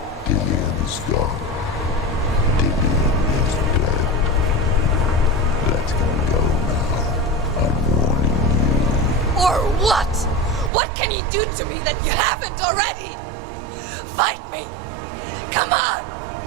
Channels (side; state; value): left; drops out; at 10.7 s